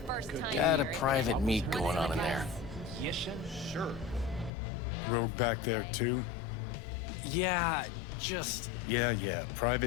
Got a private meet going on in there. Yes, sure. Rogue back there too? Yeah, just... Yeah,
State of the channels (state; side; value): drops out; right; at 4.5 s